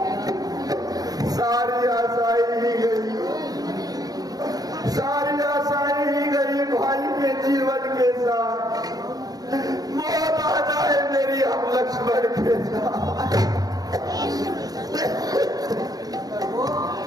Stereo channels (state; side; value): late; left; 0.18 ms